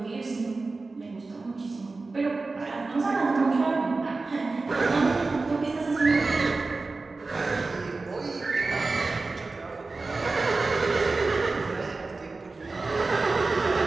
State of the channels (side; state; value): left; quieter; 3.7 dB